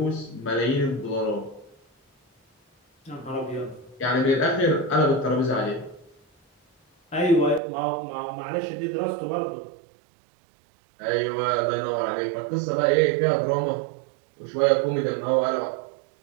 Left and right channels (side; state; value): left; drops out; at 7.6 s